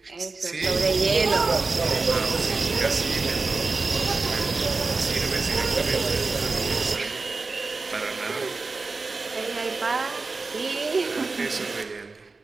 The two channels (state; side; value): quieter; left; 3.9 dB